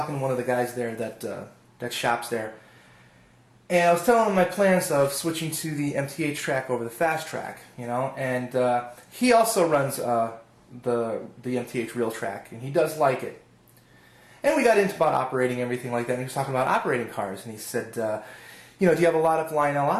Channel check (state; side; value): identical; both; correlation 1.00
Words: to one of the guys there that shops there, and I was telling him my plans of switching to the MTH track over the fast track, you know, and he also runs the MTH Realtrax, and he does like it. And we got into about operating everything like that, and he was talking about operating cars, and he said, you know, do you have a lot of Lionel